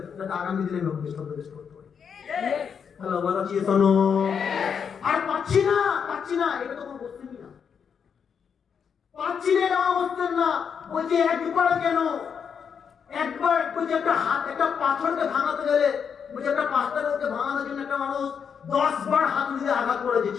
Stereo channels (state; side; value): quieter; right; 6.9 dB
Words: যাতে আগামী দিনে আমি বেস্ট করতে পারি। হ্যালো বলা চিয়ে শোনো, আর পাচ্ছি না, এটা তো কোনো বসতেনই না, পাচ্ছি না, এটা বসতেন না। বলছে একবার কেন, একবার বলছে একটা হাত, একটা পাথরকে ভাঙাতে গেলে, বলছে একটা পাথরকে ভাঙানোর জন্য একটা মানুষ 10 বার হাতুড়ি দিয়ে আঘাত করেছে,